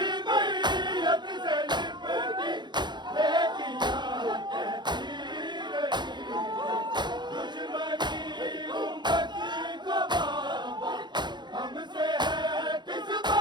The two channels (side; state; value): left; late; 0.21 ms